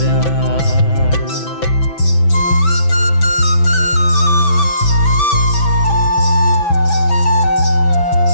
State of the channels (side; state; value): right; late; 6.0 ms